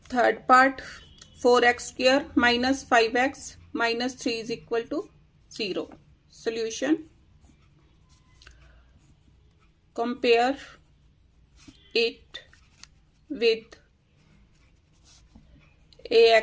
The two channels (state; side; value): identical; both; correlation 1.00